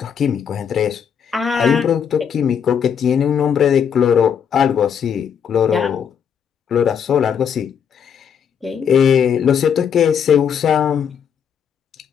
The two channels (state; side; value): quieter; right; 7.7 dB